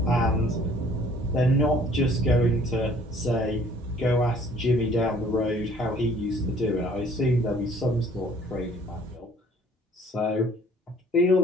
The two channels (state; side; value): normal; both; correlation 0.56